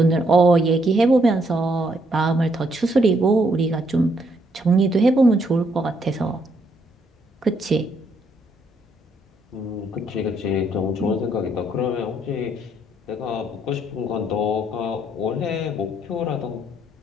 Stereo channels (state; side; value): normal; both; correlation 0.72